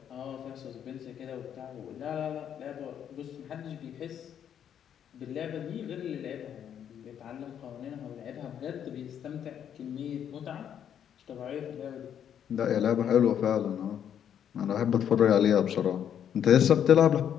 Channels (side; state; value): right; quieter; 9.1 dB